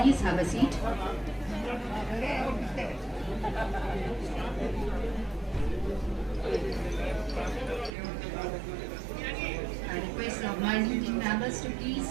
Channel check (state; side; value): drops out; left; at 7.9 s